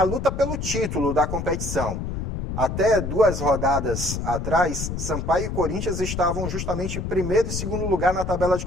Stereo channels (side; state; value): left; noise; rumble, 4 dB below the sound